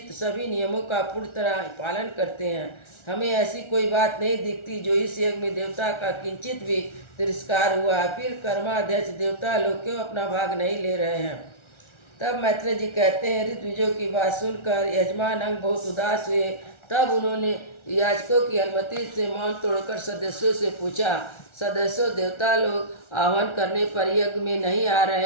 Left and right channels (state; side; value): late; right; 1.4 ms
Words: सभी नियमों का पूर्ण तरह पालन करते हैं। हमें ऐसी कोई बात नहीं दिखती जो इस यज्ञ में देवता का किंचित भी तिरस्कार हुआ। फिर कर्माध्यक्ष देवता लोग क्यों अपना भाग नहीं ले रहे हैं? तब मैत्रेय जी कहते हैं, ऋतविजों की बात सुनकर यजमान अंग बहुत उदास हुए। तब उन्होंने याजकों की अनुमति से मौन तोड़कर सदस्यों से पूछा, सदस्यों, देवता लोग आह्वान करने पर यज्ञ में नहीं आ